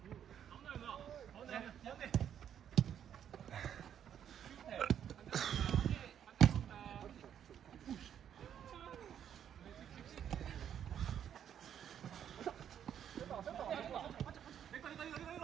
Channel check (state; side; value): quieter; left; 9.3 dB